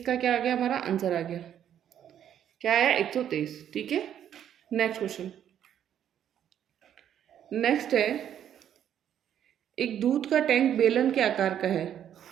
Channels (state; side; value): quieter; left; 9.9 dB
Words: क्या आ गया, हमारा आंसर आ गया। क्या आया, 123। ठीक है। नेक्स्ट क्वेश्चन, नेक्स्ट है, एक दूध का टैंक बेलन के आकार का है,